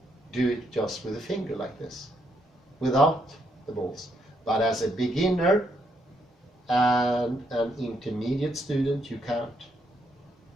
do it just with a finger like this, without the balls. But as a beginner and an intermediate student, you can't.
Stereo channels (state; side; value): normal; both; correlation 0.75